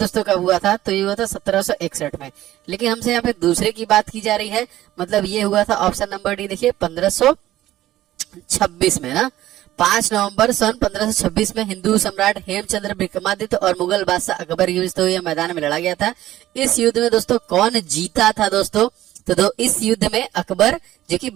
दोस्तों कब हुआ था? तो ये हुआ था 1761 में। लेकिन हमसे यहाँ पे दूसरे की बात की जा रही है, मतलब ये हुआ था ऑप्शन नंबर डी देखिए 1526 में ना। 5 नवंबर सन 1526 में हिंदू सम्राट हेमचंद्र विक्रमादित्य और मुगल बादशाह अकबर युद्ध तो ये मैदान में लड़ा गया था। इस युद्ध में दोस्तों कौन जीता था दोस्तों? तो इस युद्ध में अकबर जो कि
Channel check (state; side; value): quieter; left; 14.4 dB